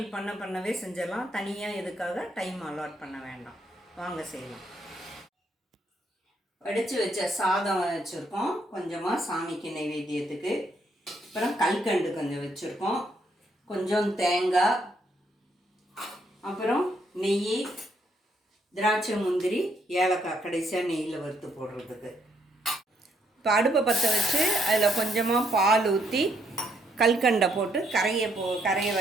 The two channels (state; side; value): normal; both; correlation 0.73